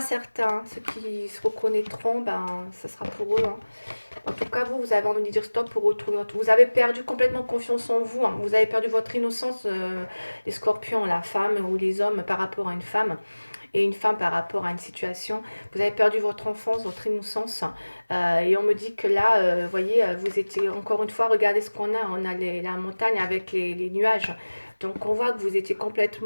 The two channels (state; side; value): inverted; both; correlation -1.00